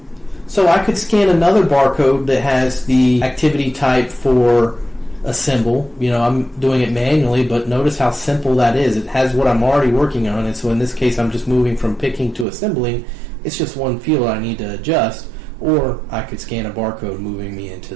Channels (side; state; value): left; drops out; at 12.5 s